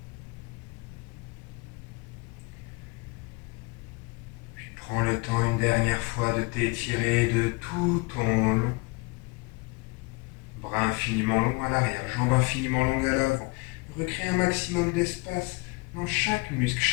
une dernière fois de t'étirer de tout ton long. Bras infiniment longs à l'arrière, jambes infiniment longues à l'avant. Recrée un maximum d'espace dans chaque muscle,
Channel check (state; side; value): quieter; right; 27.3 dB